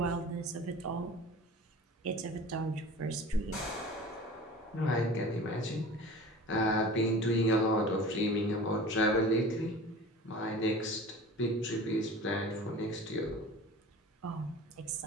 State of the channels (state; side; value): normal; both; correlation 0.39